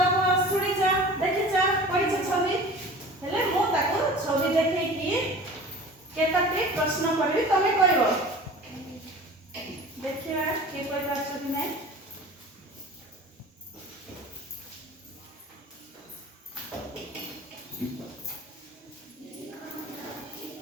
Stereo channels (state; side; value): normal; both; correlation 0.40